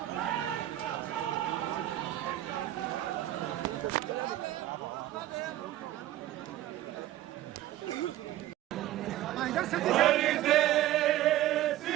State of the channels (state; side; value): quieter; left; 14.2 dB